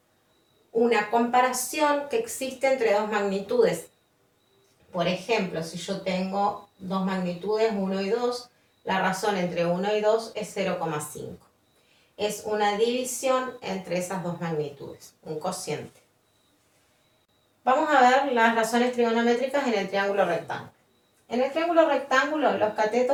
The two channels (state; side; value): identical; both; correlation 1.00